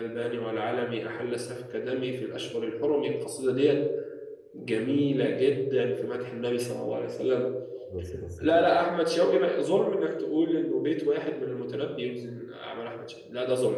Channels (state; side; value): identical; both; correlation 1.00